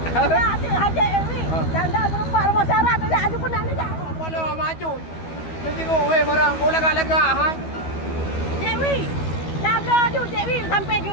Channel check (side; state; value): right; late; 12 ms